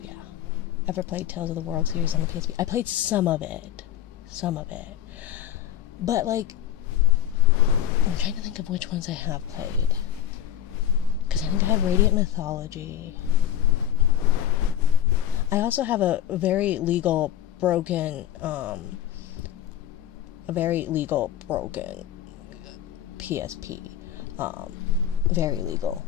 yeah. Ever played Tales of the World series on the PSP? I played some of it. But, like, I'm trying to think of which ones I have played. Because I think I have Radiant Mythology. I also have a very legal broken PSP. Very legal,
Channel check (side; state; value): right; quieter; 10.8 dB